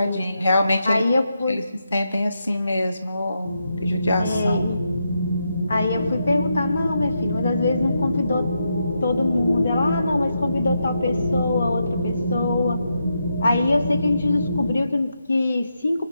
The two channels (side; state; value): both; inverted; correlation -0.83